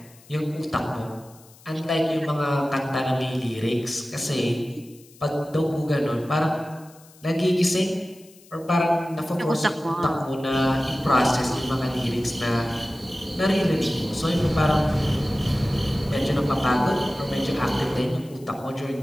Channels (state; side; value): noise; left; hiss, 25 dB below the sound